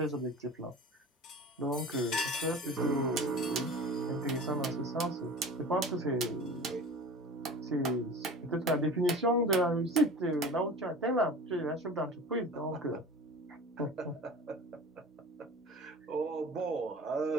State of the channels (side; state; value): both; normal; correlation 0.38